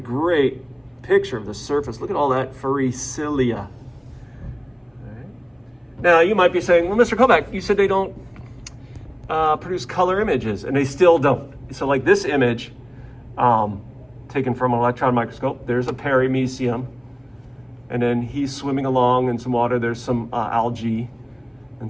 picture of the surface. Look at all that furry cilia. Right? Now you might be saying, well, Mr. Kovac, you said they don't produce color images, and they still don't. So like this image, taken from an electron microscope, there's a paramecium, and then he's swimming along in some water. There's some algae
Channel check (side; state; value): both; identical; correlation 1.00